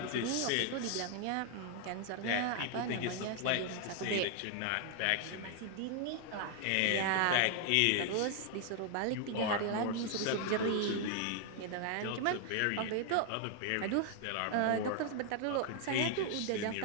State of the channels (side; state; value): both; different; correlation 0.00